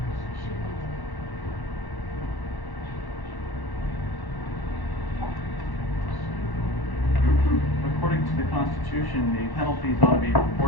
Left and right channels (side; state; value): right; late; 1.1 ms